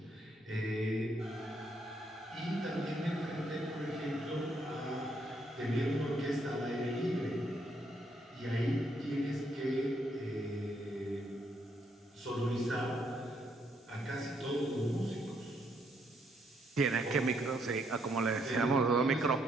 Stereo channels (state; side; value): normal; both; correlation 0.73